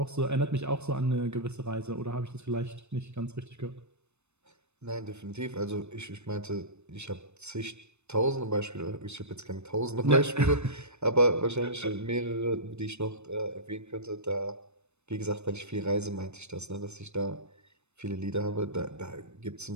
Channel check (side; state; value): left; late; 0.81 ms